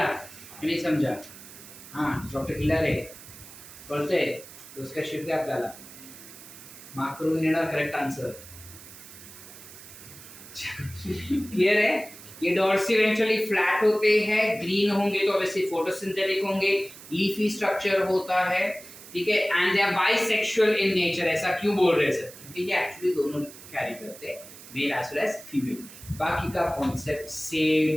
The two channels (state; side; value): noise; right; hiss, 17 dB below the sound